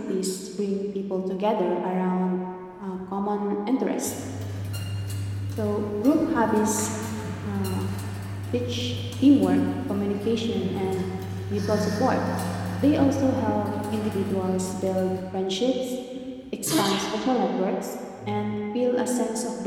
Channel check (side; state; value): both; identical; correlation 1.00